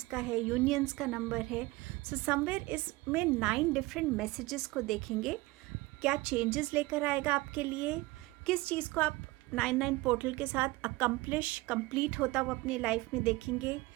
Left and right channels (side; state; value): left; quieter; 21.0 dB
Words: का है, यूनियंस का नंबर है। समवेयर इसमें 9 डिफरेंट मैसेजेस को देखेंगे, क्या चेंजेस लेकर आएगा आपके लिए, किस चीज़ को आप 99 पोर्टल के साथ कंप्लीट होता हुआ अपनी लाइफ में देखेंगे,